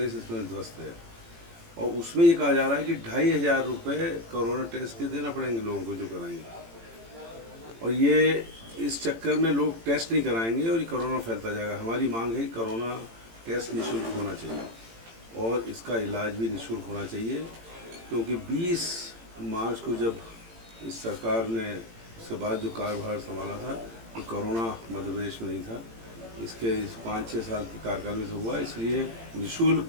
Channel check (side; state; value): left; late; 18 ms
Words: इसमें ध्वस्त है। और उसमें ये कहा जा रहा है कि 2,500 रुपये कोरोना टेस्ट के देना पड़ेंगे लोगों को जो कराएंगे, और ये इस चक्कर में लोग टेस्ट नहीं कराएंगे और ये कोरोना फैलता जाएगा। हमारी मांग है कि कोरोना टेस्ट निःशुल्क होना चाहिए और इसका इलाज भी निःशुल्क होना चाहिए, क्योंकि 20 मार्च को जब इस सरकार ने उसके बाद जो कार्यभार संभाला था तो कोरोना मध्य प्रदेश में नहीं था। इसके इस 5-6 साल के कार्यकाल में से हुआ, इसलिए निःशुल्क